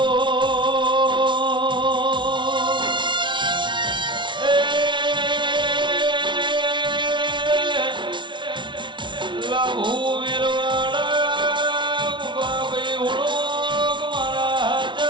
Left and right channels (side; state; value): left; late; 0.24 ms